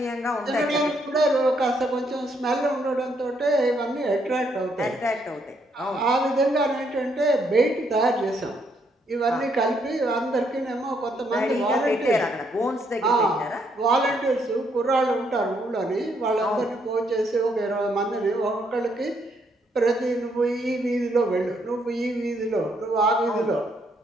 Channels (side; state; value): both; normal; correlation 0.73